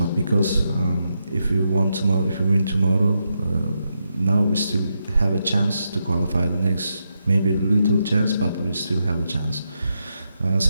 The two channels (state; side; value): inverted; both; correlation -0.84